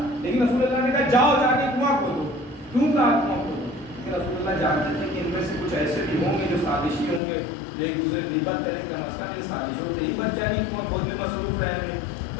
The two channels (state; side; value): drops out; right; at 7.2 s